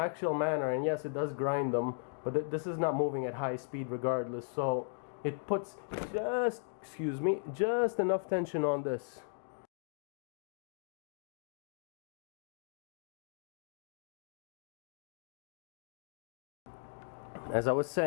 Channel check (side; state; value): right; silent; digital silence